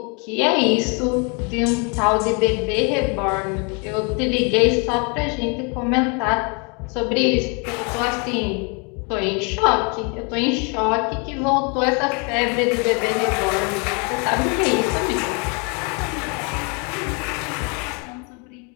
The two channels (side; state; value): right; quieter; 34.0 dB